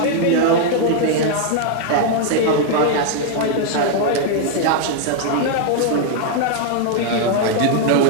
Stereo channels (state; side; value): different; both; correlation 0.00